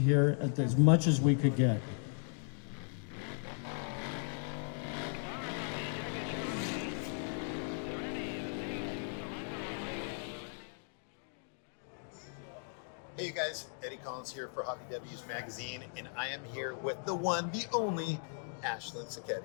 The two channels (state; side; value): silent; right; 53 dB below the other